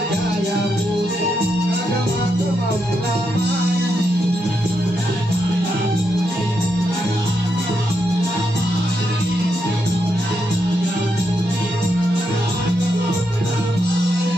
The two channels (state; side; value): normal; both; correlation 0.82